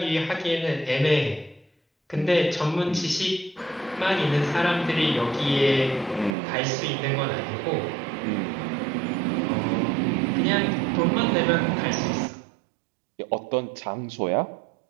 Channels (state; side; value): drops out; left; at 6.4 s